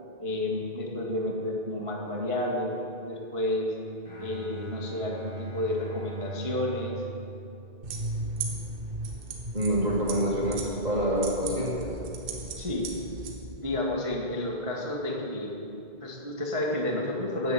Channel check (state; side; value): late; left; 2.5 ms